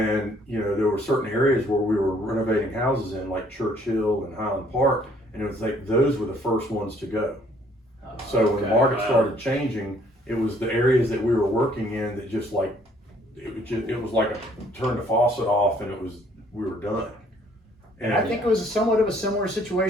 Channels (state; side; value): normal; both; correlation 0.62